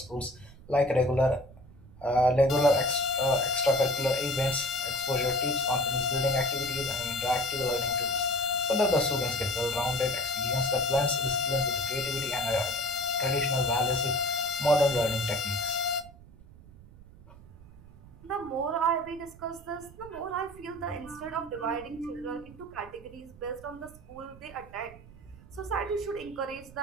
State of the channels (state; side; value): noise; right; rumble, 20 dB below the sound